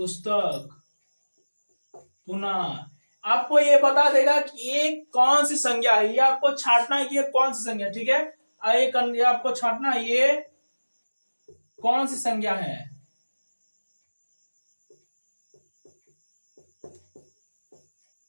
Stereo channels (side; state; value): both; inverted; correlation -1.00